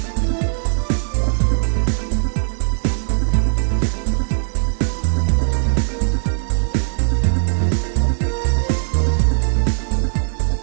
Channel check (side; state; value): left; silent; digital silence